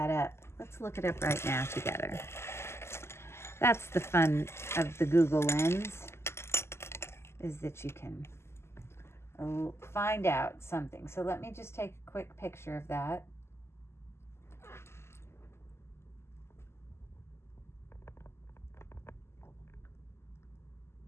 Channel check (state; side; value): late; right; 0.12 ms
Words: up. Let's look it up right now together. That's the fun of the Google Lens, is that you can find out something. So let me just take a quick picture of that.